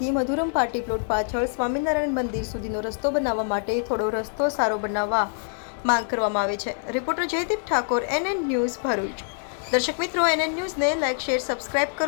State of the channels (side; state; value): right; silent; 62 dB below the other